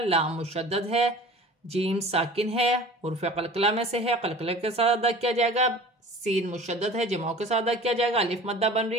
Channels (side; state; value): both; normal; correlation 0.42